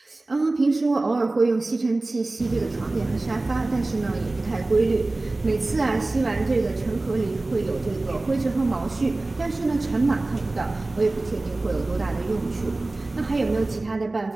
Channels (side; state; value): left; quieter; 3.0 dB